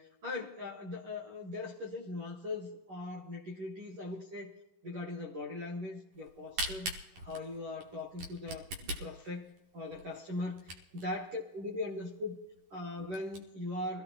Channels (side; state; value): left; late; 11 ms